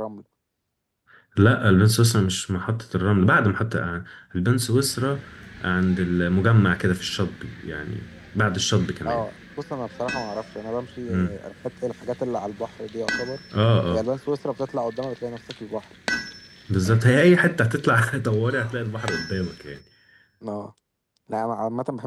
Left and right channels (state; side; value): identical; both; correlation 1.00